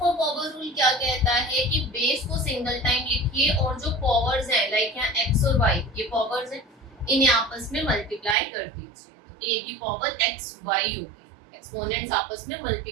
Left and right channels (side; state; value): left; drops out; at 8.3 s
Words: power rule क्या कहता है कि बेस को सिंगल टाइम लिखिए और जो पावर्स हैं लाइक यहाँ x और y ये पावर्स हैं, इन्हें आपस में मल्टीप्लाई कर दीजिए, तो a की पावर x y होगी, एक्सपोनेंट्स आपस में